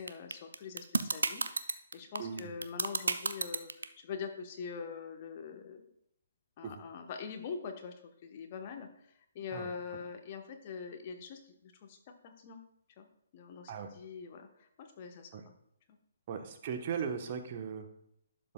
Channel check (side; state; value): both; inverted; correlation -0.70